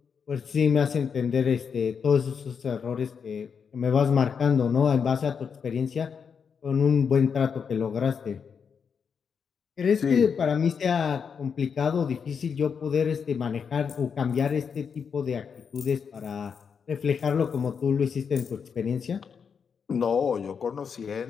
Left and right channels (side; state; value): right; quieter; 6.5 dB